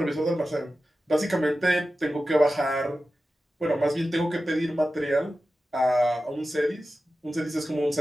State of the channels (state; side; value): normal; both; correlation 0.93